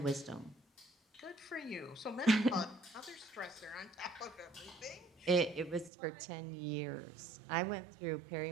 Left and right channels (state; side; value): drops out; left; at 5.9 s